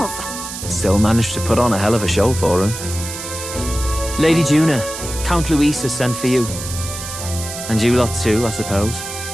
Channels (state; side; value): noise; right; hiss, 8 dB below the sound